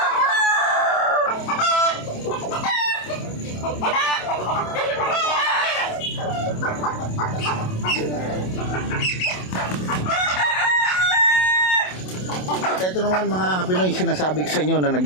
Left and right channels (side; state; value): right; late; 27 ms